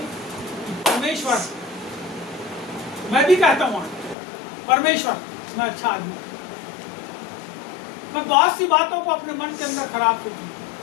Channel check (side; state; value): right; drops out; at 4.2 s